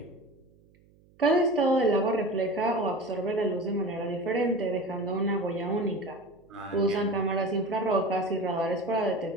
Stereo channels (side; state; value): right; noise; hum, 30 dB below the sound